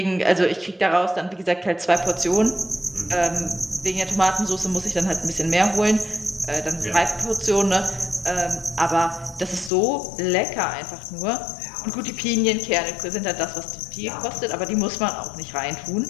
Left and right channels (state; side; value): drops out; right; at 9.7 s